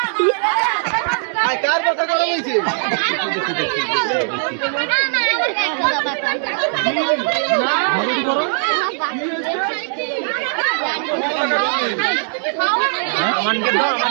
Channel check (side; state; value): left; silent; 66 dB below the other